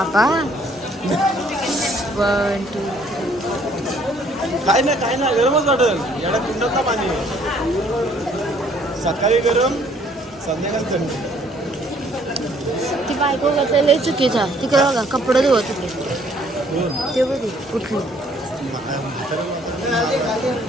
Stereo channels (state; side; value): normal; both; correlation 0.62